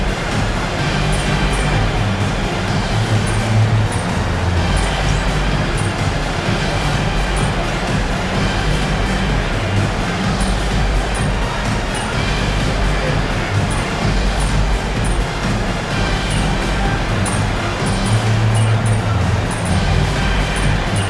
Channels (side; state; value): both; identical; correlation 1.00